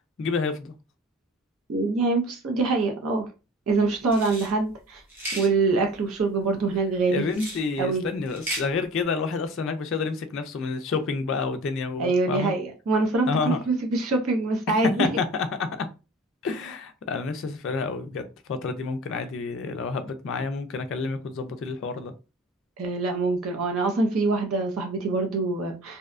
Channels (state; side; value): normal; both; correlation 0.41